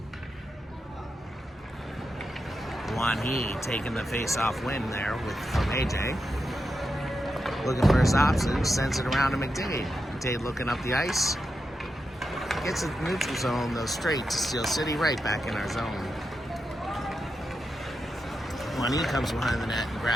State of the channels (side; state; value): both; normal; correlation 0.87